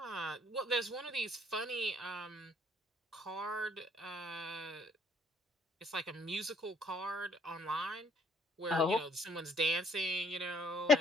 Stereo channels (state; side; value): normal; both; correlation 0.63